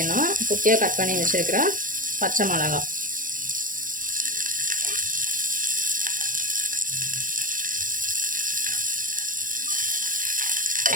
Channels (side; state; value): left; late; 0.39 ms